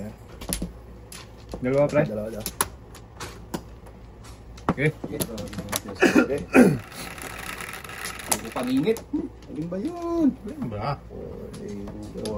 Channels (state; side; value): identical; both; correlation 1.00